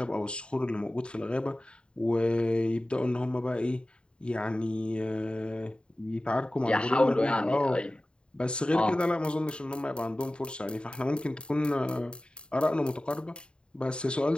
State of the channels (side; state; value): right; late; 0.052 ms